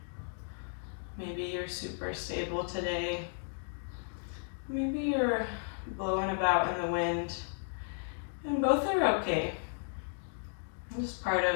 Maybe you're super stable today. Maybe you're blowing about in the wind. And both are okay. Just part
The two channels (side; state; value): right; silent; digital silence